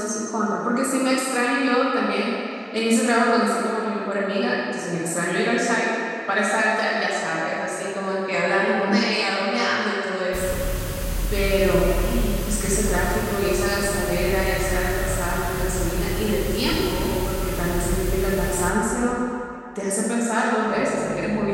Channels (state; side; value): identical; both; correlation 1.00